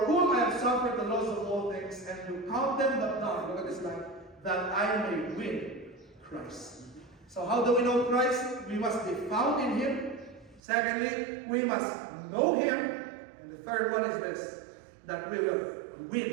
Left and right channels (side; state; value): left; drops out; at 10.6 s